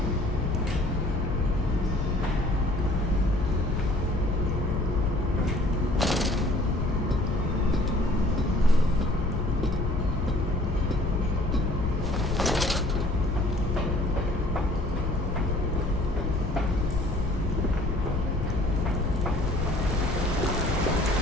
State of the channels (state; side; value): noise; left; rumble, 2 dB below the sound